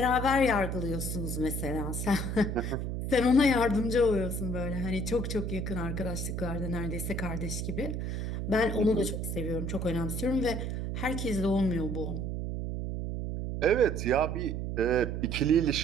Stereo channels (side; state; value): right; noise; hum, 3 dB below the sound